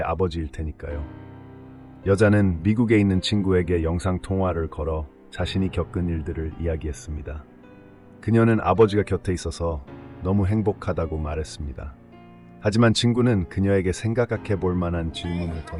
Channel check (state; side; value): identical; both; correlation 1.00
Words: 아버지일 테니까요. 여자는 미국에 있는 친구에게 영상통화를 걸어 자신이 겪은 일들을 이야기했습니다. 그녀는 아버지가 곁에 있어서 너무 행복하다고 말했습니다. 하지만 친구는 그녀에게 생각해 볼 만한 질문을